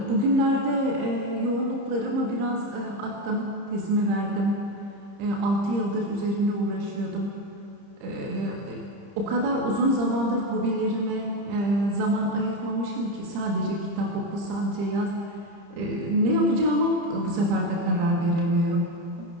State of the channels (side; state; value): left; late; 30 ms